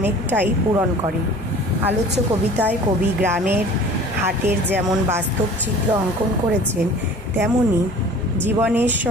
পূরণ করে। আলোচ্য কবিতায় কবি গ্রামের হাটের যেমন বাস্তব চিত্র অঙ্কন করেছেন, তেমনি জীবনের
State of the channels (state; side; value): normal; both; correlation 0.45